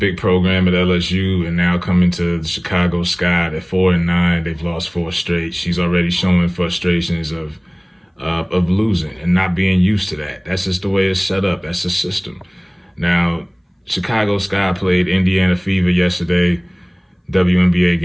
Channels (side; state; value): both; identical; correlation 1.00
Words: program at LSU and now coming to the Chicago Sky at 4-9, they've lost 4 straight. She's already showing frustrations of losing and not being used to that. That's just the way it's set up. That's the system. Now, Chicago Sky played Indiana Fever yesterday, WNBA